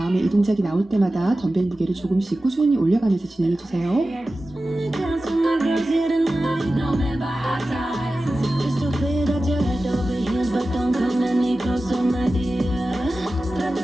이 동작이 나올 때마다 덤벨 무게를 조금씩 꾸준히 올려가면서 진행해주세요. I just wanna dance with my girls here tonight. No man by our sides. Just so clear that you're head over heels, but don't come any closer, my dear.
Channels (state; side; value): normal; both; correlation 0.95